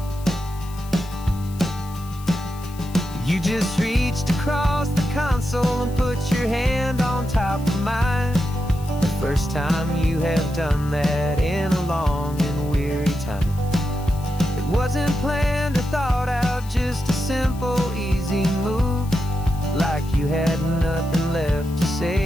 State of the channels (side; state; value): left; noise; hiss, 20 dB below the sound